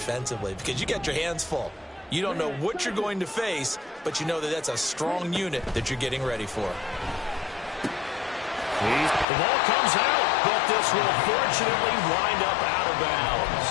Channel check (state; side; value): drops out; right; at 9.2 s